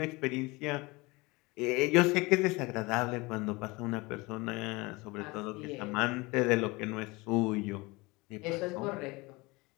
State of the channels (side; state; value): right; quieter; 24.0 dB